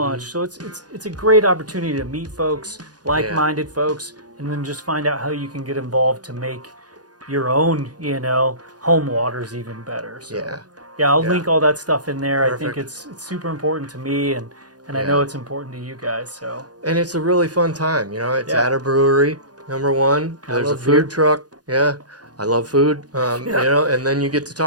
So it's a great opportunity to meet folks, like-minded folks, and then just find out how you can get involved to make your own, you know, home waters even better. So, I'll link all that stuff in there. Perfect. I think it's super important to me, and I know it's important to you guys. So. And it's a really fun time. You know, it's at a brewery, number one. There's a food truck. Yeah. I love food, you know, and then you get to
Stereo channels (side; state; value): left; late; 0.69 ms